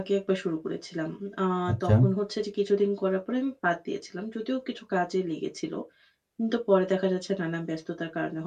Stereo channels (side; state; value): both; identical; correlation 1.00